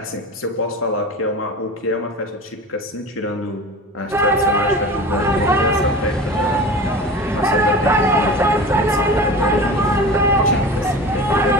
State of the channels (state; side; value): normal; both; correlation 0.34